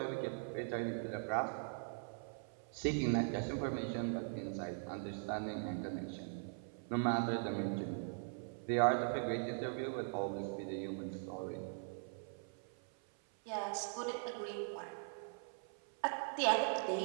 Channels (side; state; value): left; silent; 50 dB below the other